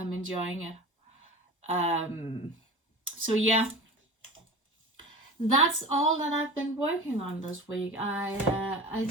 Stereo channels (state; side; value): normal; both; correlation 0.34